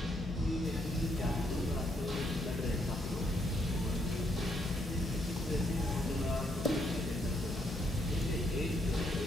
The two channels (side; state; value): both; normal; correlation 0.74